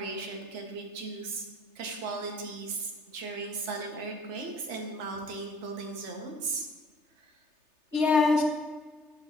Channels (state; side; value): late; left; 3.3 ms